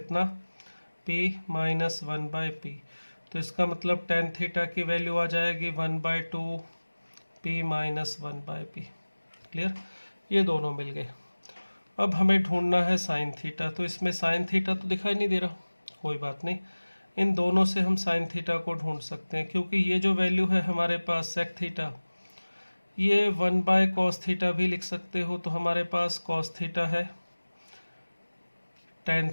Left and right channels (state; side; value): inverted; both; correlation -1.00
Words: p माइनस 1 बाय पी। तो इसका मतलब टेन थीटा की वैल्यू आ जाएगी 1 by 2 p minus 1 by p. Clear, ये दोनों मिल गए। अब हमें ढूंढना है साइन थीटा, तो इसमें साइन थीटा तो दिखाई नहीं दे रहा, कोई बात नहीं, इन दोनों से हम साइन थीटा को ढूंढ सकते हैं, क्योंकि ये जो वैल्यू है हमारे पास सेक थीटा, ये 1 बाय कॉस थीटा भी लिख सकते हो, तो हमारे पास कॉस थीटा है, टेन